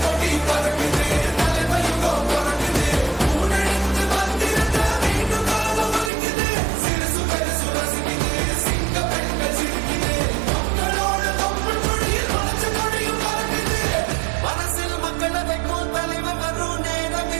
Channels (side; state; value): left; drops out; at 6.1 s